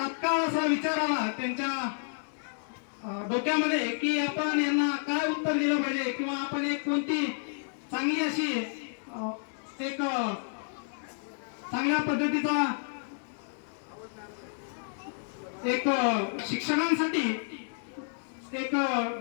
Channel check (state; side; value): silent; right; digital silence